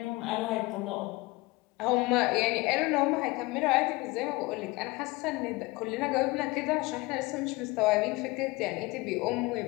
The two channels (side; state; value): right; quieter; 22.7 dB